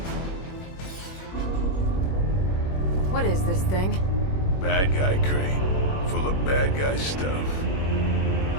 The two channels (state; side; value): late; right; 21 ms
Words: What is this thing? Bad guy crate. Full of bad guy stuff.